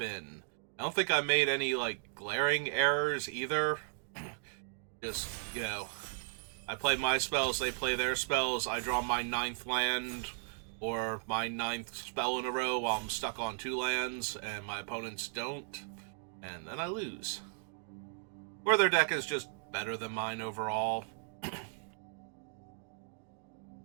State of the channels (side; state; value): left; silent; digital silence